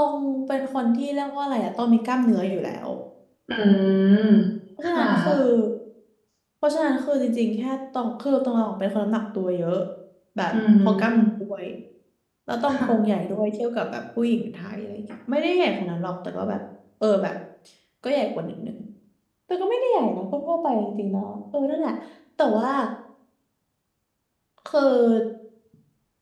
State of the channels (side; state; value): both; identical; correlation 1.00